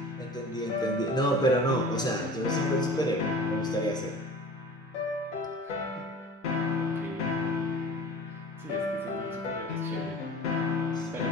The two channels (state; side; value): normal; both; correlation 0.41